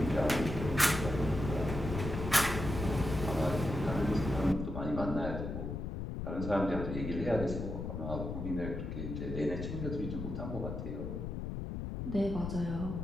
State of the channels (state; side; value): noise; left; rumble, 5 dB below the sound